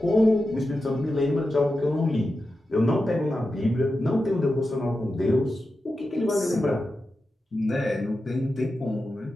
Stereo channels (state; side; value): normal; both; correlation 0.91